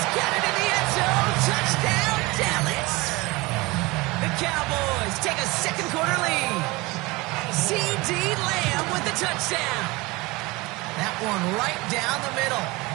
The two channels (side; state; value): left; quieter; 23.1 dB